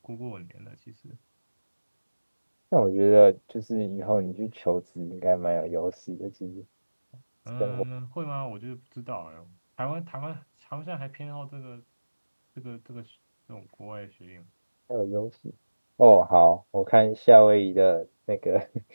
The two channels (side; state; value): both; inverted; correlation -1.00